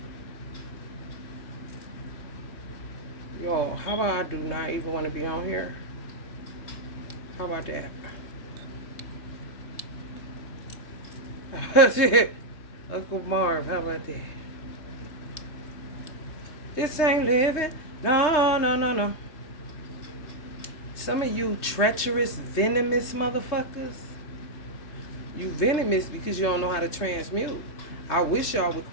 Yo, how about I do not even want to be on here? How about that? Shit. Uncle Marv, how about that? This ain't living. No, no, no, no. Some of you treacherous, venomous motherfuckers. You venomous because you don't know how to transmute. I wish y'all would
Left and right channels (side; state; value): right; late; 3.3 ms